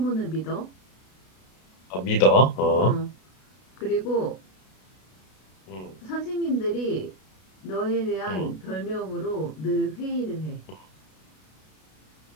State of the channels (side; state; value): right; late; 32 ms